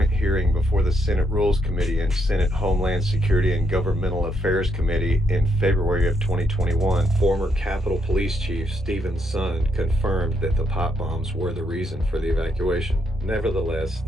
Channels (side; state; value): both; normal; correlation 0.76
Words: hearing before the Senate Rules Committee and Senate Homeland Security and Governmental Affairs Committee in February of 2021, former Capitol Police Chief Stephen Sund confirmed that the pipe bombs were the reason for the evacuation. Nevertheless,